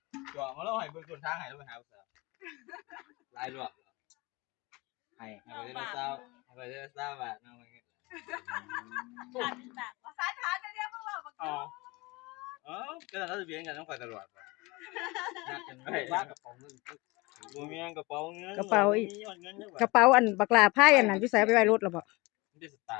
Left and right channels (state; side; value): quieter; right; 24.2 dB